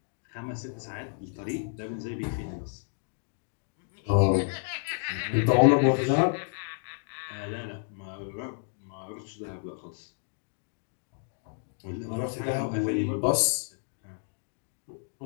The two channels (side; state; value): right; silent; digital silence